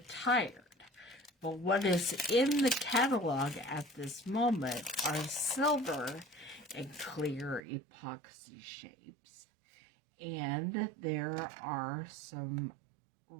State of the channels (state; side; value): drops out; left; at 7.6 s